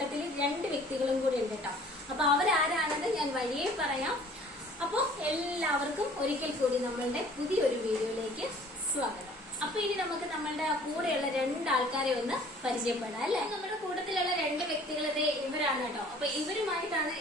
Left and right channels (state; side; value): normal; both; correlation 0.52